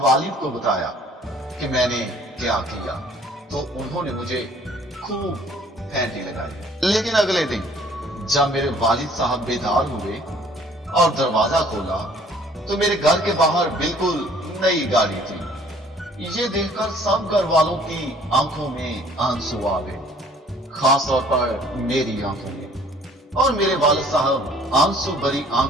वालिद को बताया कि मैंने क्या किया, तो उन्होंने मुझे खूब फैंटी लगाई। लेकिन अगले दिन जब मेरे वालिद साहब बेदार हुए और दरवाजा खोला तो मेरे घर के बाहर बिल्कुल नई गाड़ी थी। ये देखकर सब घर वालों की आंखों में आंसू आ गए, खास तौर पर मेरी आंखों में। और मेरे वालिद साहब आंसू भरी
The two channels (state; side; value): normal; both; correlation 0.56